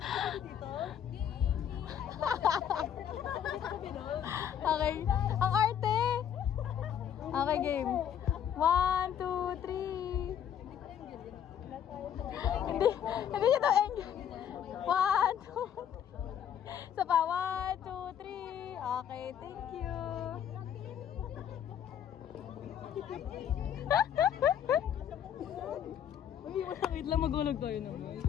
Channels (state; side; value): quieter; right; 9.2 dB